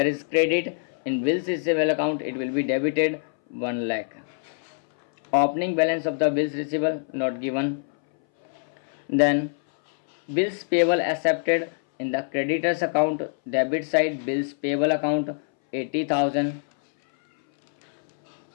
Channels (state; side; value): silent; right; 60 dB below the other